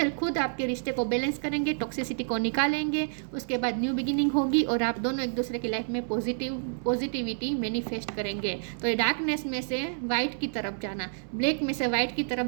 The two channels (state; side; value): silent; left; digital silence